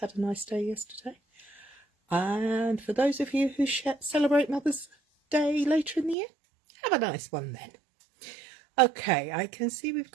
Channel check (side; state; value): left; drops out; at 6.2 s